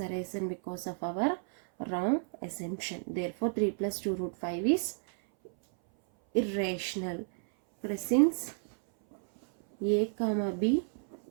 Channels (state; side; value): silent; left; 57 dB below the other